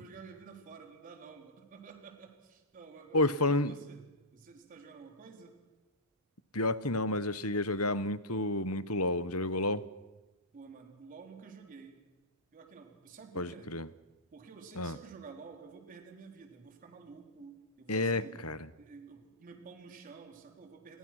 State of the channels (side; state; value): both; normal; correlation -0.15